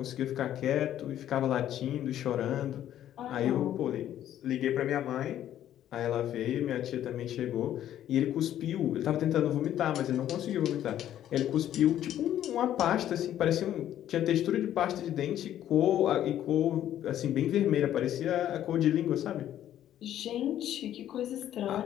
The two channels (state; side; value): quieter; right; 11.5 dB